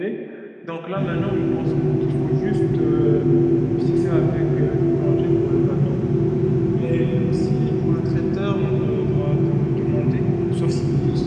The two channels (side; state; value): both; identical; correlation 1.00